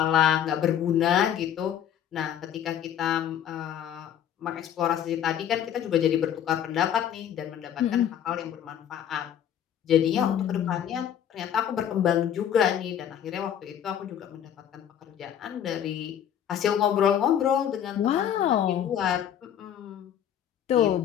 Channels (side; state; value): right; quieter; 9.7 dB